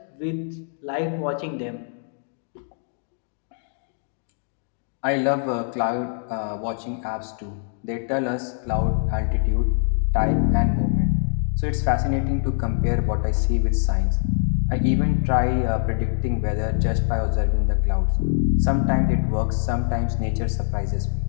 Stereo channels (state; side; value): silent; right; 63 dB below the other